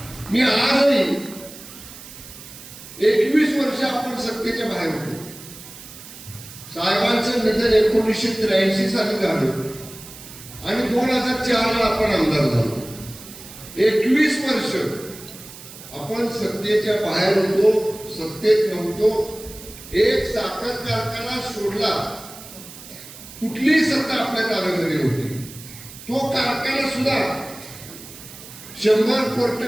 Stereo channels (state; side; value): noise; right; hiss, 16 dB below the sound